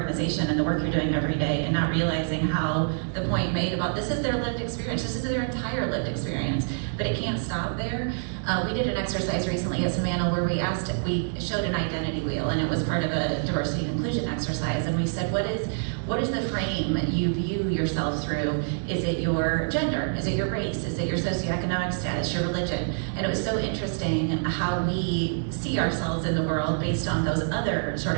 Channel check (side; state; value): left; silent; digital silence